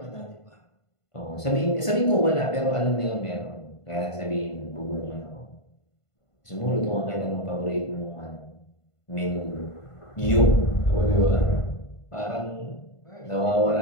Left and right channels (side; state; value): right; late; 1.5 ms